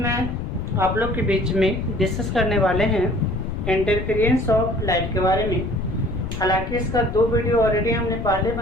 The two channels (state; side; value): noise; left; rumble, 5 dB below the sound